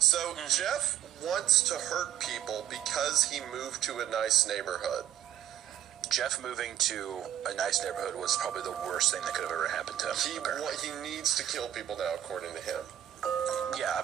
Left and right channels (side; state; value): left; quieter; 11.2 dB